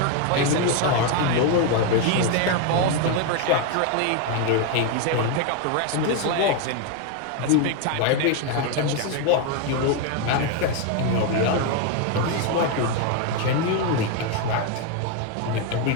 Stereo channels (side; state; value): both; different; correlation 0.01